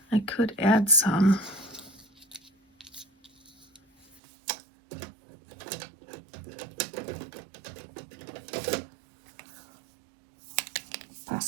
I could add some.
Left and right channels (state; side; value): drops out; left; at 4.2 s